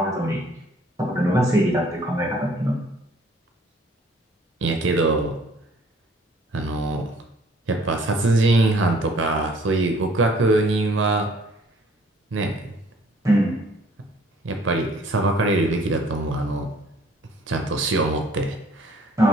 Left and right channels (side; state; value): both; normal; correlation 0.57